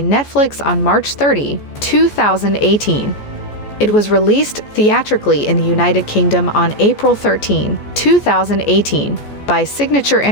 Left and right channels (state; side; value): late; right; 14 ms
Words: Netflix on March 30, 2018. It was released theatrically in the United Kingdom on April 13, 2018, by Signature